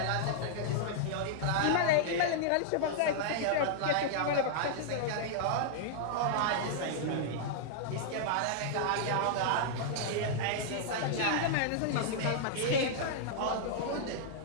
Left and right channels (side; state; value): both; different; correlation -0.01